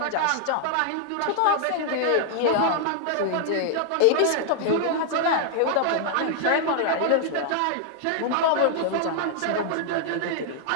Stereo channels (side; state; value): both; different; correlation -0.01